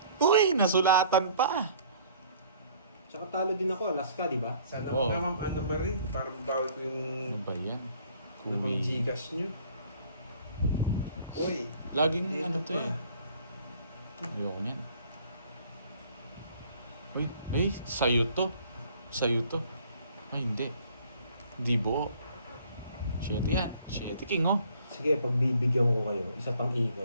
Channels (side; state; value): both; inverted; correlation -0.56